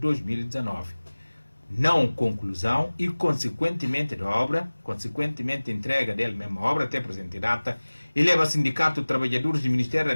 Não conclusão e, consequentemente, da obra, consequentemente, entrega dele mesma obra até a presente data, eleva o Sindicato de Trabalhadores do Ministério da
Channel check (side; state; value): both; inverted; correlation -1.00